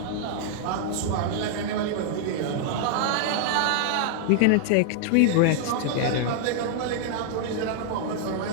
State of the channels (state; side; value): different; both; correlation -0.01